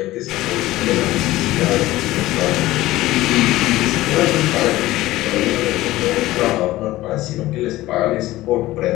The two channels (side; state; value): right; quieter; 16.9 dB